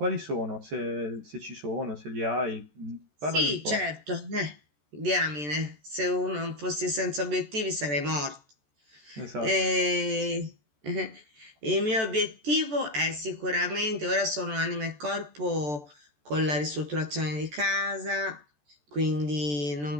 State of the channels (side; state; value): left; late; 14 ms